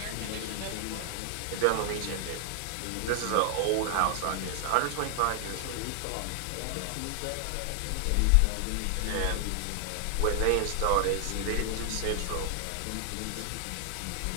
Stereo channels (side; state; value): both; different; correlation 0.00